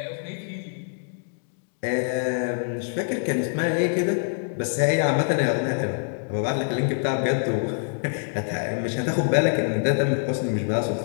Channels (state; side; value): silent; right; digital silence